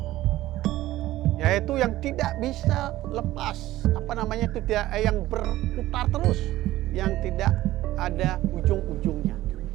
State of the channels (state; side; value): quieter; left; 15.7 dB